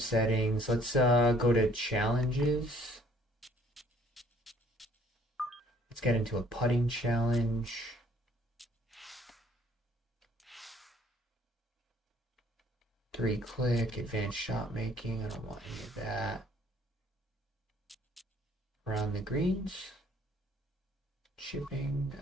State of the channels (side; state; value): both; normal; correlation 0.60